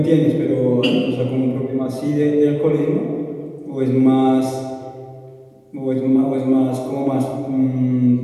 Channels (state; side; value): identical; both; correlation 1.00